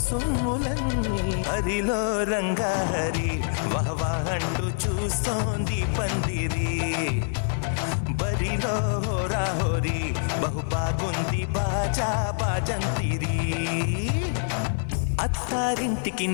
సొమ్ములన్నీ హరిలో రంగా హరి వహవా అంటూ చూస్తోంది పందిరి బరిలో హోరా హోరి బహుబాగుంది బాజా బాజంతిరి అత్తారింటికి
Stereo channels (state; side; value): silent; right; 61 dB below the other